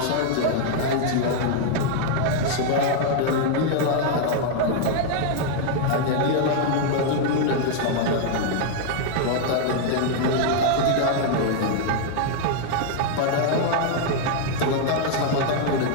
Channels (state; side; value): different; both; correlation -0.01